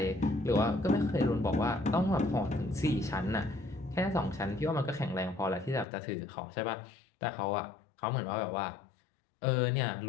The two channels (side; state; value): right; drops out; at 5.9 s